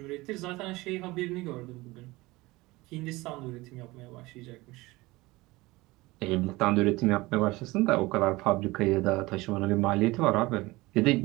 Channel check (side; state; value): left; quieter; 21.0 dB